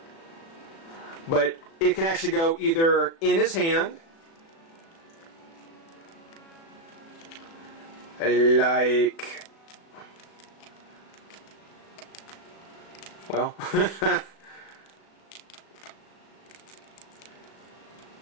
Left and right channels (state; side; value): late; right; 36 ms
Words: But it can actually go either in his hand, like, well,